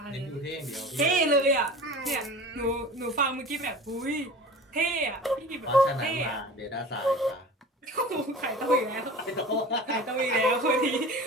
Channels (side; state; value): both; normal; correlation 0.37